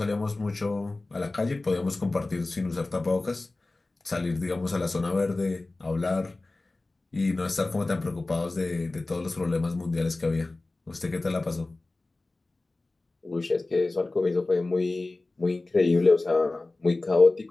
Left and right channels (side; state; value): right; quieter; 3.1 dB